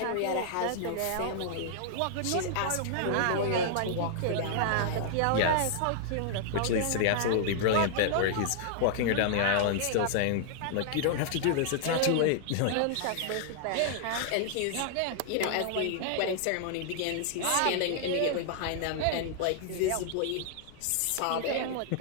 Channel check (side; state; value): both; different; correlation -0.01